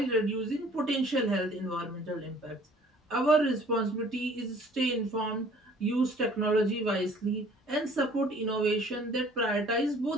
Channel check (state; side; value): normal; both; correlation 0.54